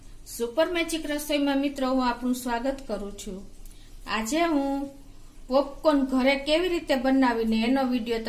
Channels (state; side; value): identical; both; correlation 1.00